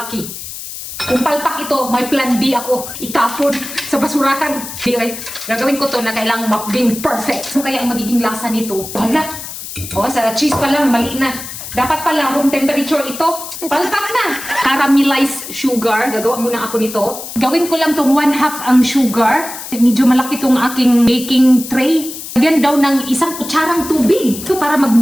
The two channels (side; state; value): left; noise; hiss, 10 dB below the sound